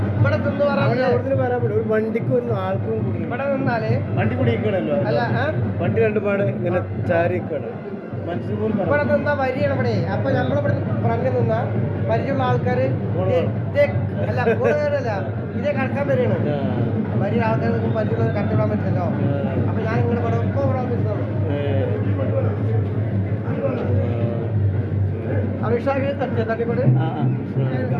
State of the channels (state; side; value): identical; both; correlation 1.00